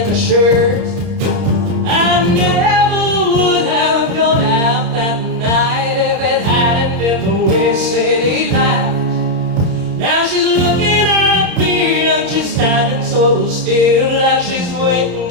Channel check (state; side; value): late; left; 30 ms